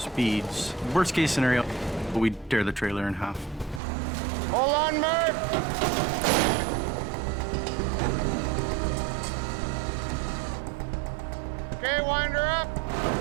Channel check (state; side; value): drops out; left; at 3.8 s